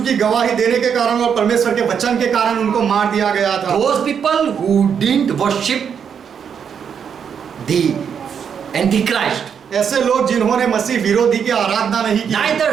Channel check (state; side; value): quieter; left; 7.4 dB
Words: की गवाही देने के कारण और परमेश्वर के वचन के कारण उनको मार दिया गया था। Those people who didn't worship the Antichrist, ऐसे लोग जिन्होंने मसीह विरोधी की आराधना नहीं की